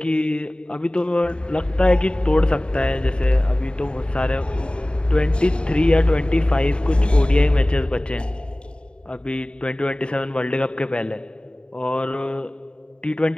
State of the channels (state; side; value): late; right; 0.052 ms